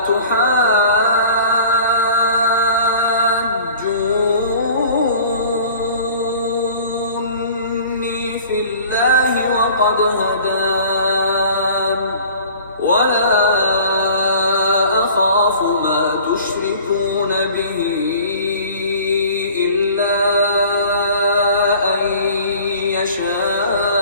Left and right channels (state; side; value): inverted; both; correlation -0.46